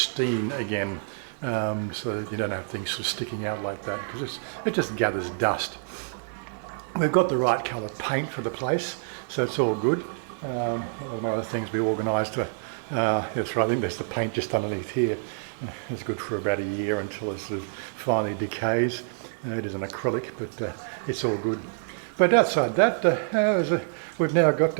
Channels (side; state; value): left; silent; 60 dB below the other